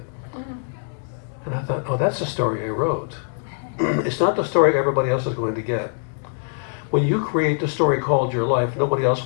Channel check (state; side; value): silent; right; 63 dB below the other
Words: And I thought, oh, that's the story I wrote. It's not the story everybody else is going to get. When you create the story called your life, nobody else